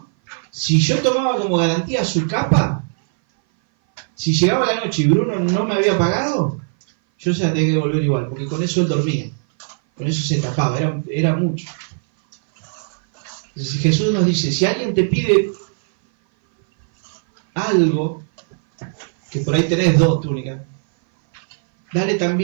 Si yo tomaba como garantía su capa, si llegaba la noche y Bruno no me había pagado, yo se la tenía que devolver igual, porque con eso él dormía, con eso se tapaba, era mucho. Entonces Jesús nos dice, si alguien te pide algo, que por ahí tenés 2 túnicas, dale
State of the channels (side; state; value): left; silent; 59 dB below the other